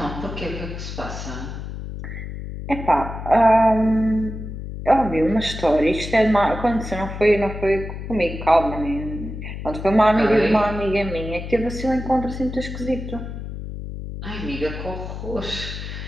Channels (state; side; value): noise; left; hum, 8 dB below the sound